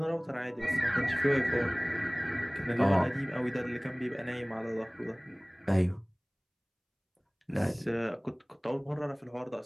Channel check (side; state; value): both; identical; correlation 1.00